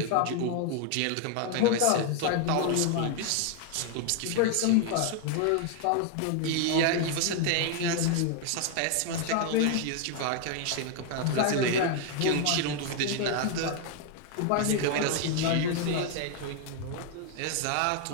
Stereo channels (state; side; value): different; both; correlation 0.00